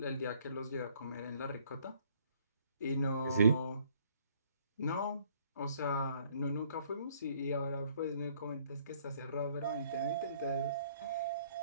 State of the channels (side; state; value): both; inverted; correlation -0.62